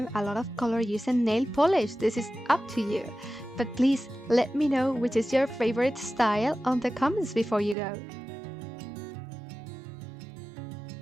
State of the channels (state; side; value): drops out; left; at 7.8 s